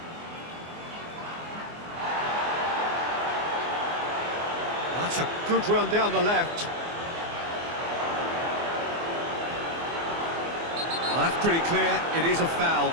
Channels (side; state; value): left; late; 24 ms